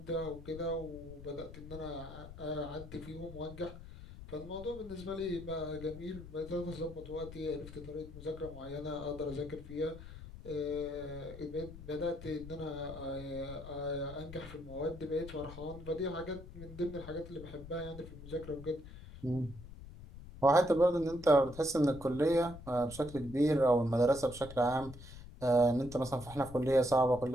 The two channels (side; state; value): left; noise; rumble, 14 dB below the sound